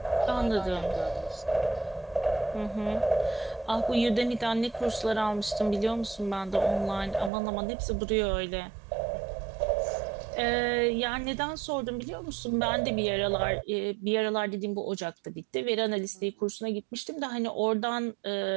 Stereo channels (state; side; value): drops out; left; at 7.3 s